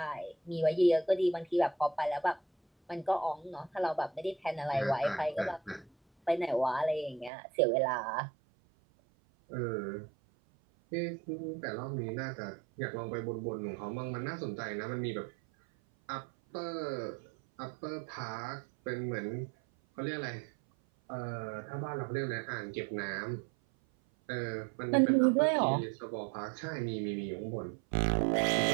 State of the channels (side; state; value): left; drops out; at 7.3 s